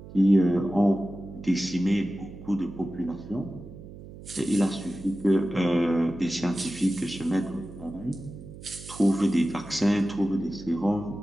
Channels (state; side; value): noise; right; hum, 15 dB below the sound